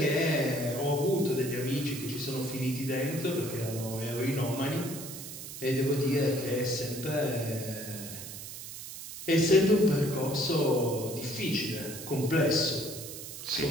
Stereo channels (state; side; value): noise; right; hiss, 10 dB below the sound